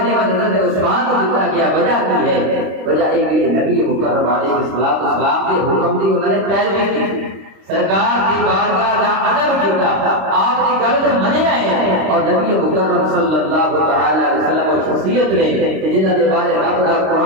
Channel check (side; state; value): left; late; 26 ms